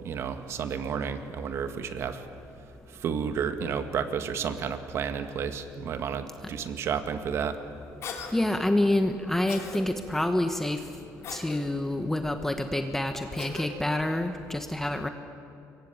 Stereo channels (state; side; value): normal; both; correlation 0.79